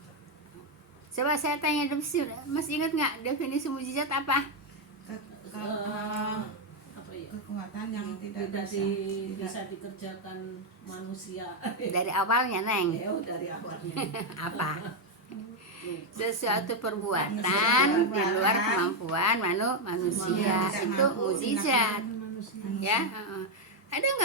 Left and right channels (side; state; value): both; normal; correlation 0.03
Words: Coba saya tanya, masih ingat nggak definisi mukjizat apa? Kekuatan yang tidak bisa dikerjakan manusia. Dari awalnya Neng. Dari awalnya. Apa? Sesuatu perbuatan di luar kemampuan manusia. Itu mukjizat. Ya. Ada